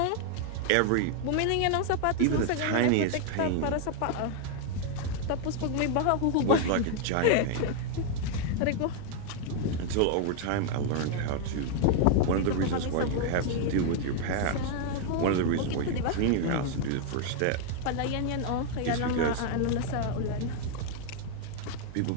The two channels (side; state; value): both; different; correlation 0.00